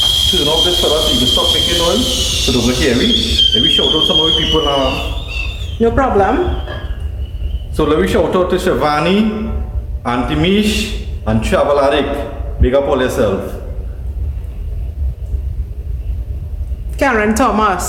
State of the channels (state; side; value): identical; both; correlation 1.00